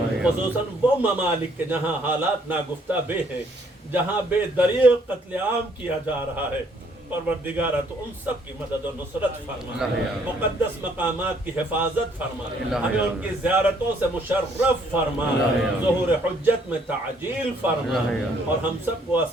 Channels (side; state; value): both; normal; correlation 0.65